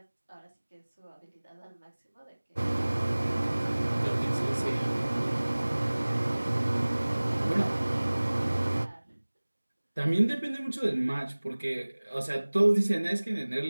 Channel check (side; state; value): both; inverted; correlation -1.00